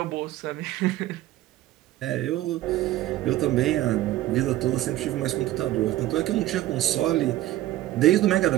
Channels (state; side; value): quieter; left; 15.1 dB